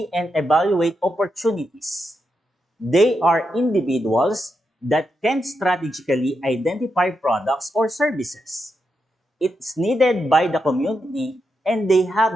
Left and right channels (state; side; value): normal; both; correlation 0.84